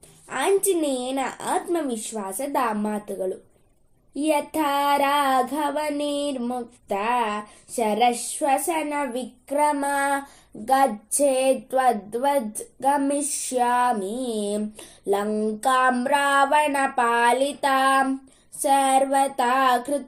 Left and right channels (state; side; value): identical; both; correlation 1.00